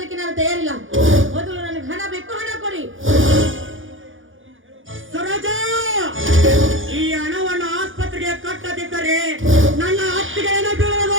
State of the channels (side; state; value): left; late; 0.58 ms